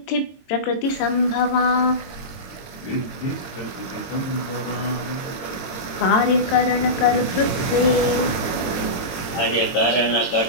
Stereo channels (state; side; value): late; right; 22 ms